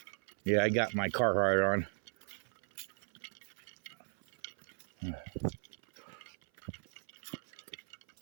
Yeah, I got my Carhartt on.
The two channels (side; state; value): left; silent; 53 dB below the other